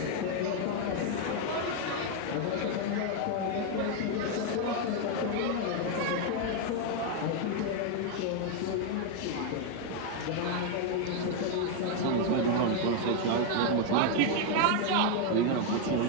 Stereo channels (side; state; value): both; different; correlation 0.01